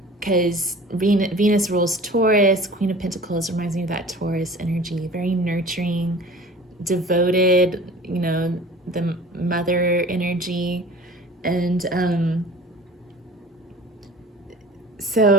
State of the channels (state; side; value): normal; both; correlation 0.42